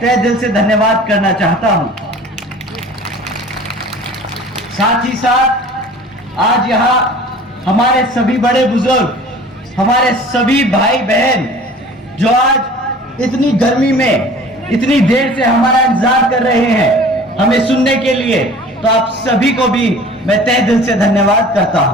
तहे दिल से धन्यवाद करना चाहता हूं। साथ ही साथ आज यहां हमारे सभी बड़े बुजुर्ग, हमारे सभी भाई बहन जो आज इतनी गर्मी में इतनी देर से हमारा इंतजार कर रहे हैं हमें सुनने के लिए, तो आप सभी को भी मैं तहे दिल से धन्यवाद करता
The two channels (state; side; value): normal; both; correlation 0.45